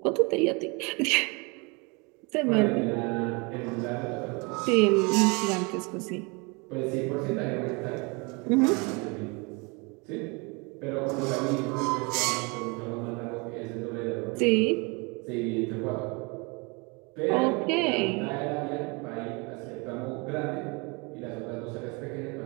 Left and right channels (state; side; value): quieter; left; 29.5 dB